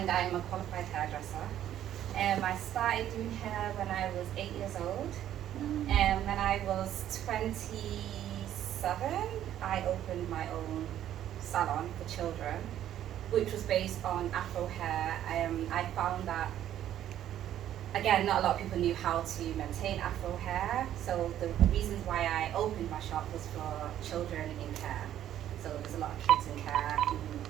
I'm a qualified hairdresser. I started doing hair when I was 8 years old. When I was 27, I opened my own salon for children, which was based on afro hair. I found that, again, not a lot of people knew how to maintain afro hair, so the reasons why I opened my shop was for children in care. So there's a lot of kids in care who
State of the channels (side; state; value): left; quieter; 11.5 dB